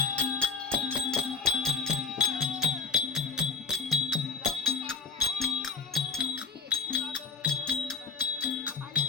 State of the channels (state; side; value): quieter; right; 4.8 dB